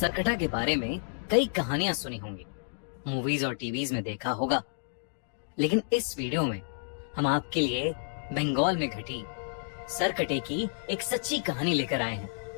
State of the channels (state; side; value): silent; right; digital silence